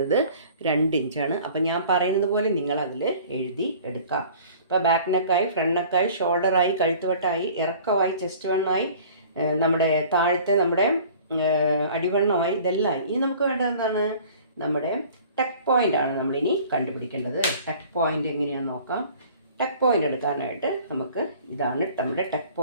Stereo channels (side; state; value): both; inverted; correlation -0.48